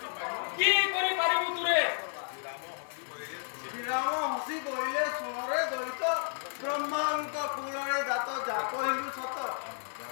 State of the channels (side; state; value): right; silent; 56 dB below the other